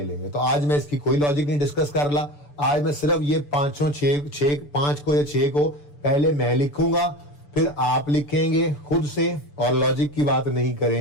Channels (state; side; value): late; right; 6.9 ms